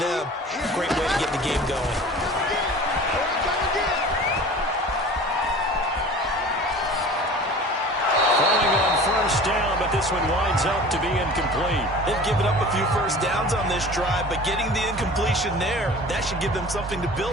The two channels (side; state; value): both; normal; correlation 0.41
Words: Great way to get the game going. Falling on first down, but this one winds up to be incomplete. They've given up a few first downs on this drive, but getting the incompletion there, that should give them something to